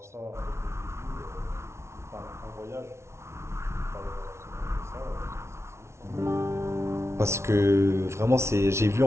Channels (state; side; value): late; left; 0.13 ms